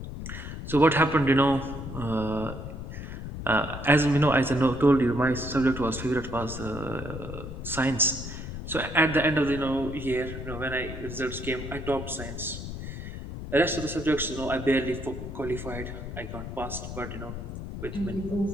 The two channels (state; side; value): noise; left; rumble, 8 dB below the sound